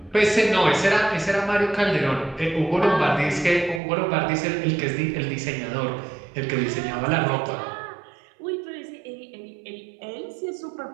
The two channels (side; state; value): left; drops out; at 3.8 s